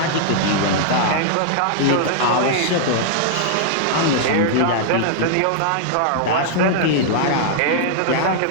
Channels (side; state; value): both; different; correlation -0.01